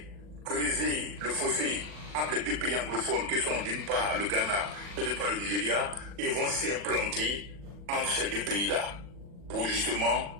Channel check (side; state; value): left; late; 40 ms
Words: creuser le fossé entre les deux pays anglophones, que sont d'une part le Ghana et d'autre part le Nigeria, et vont s'implanter entre ces deux pays-là, pour